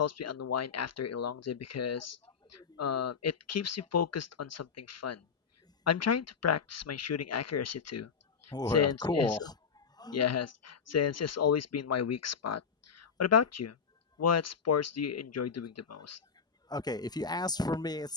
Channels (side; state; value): right; quieter; 6.2 dB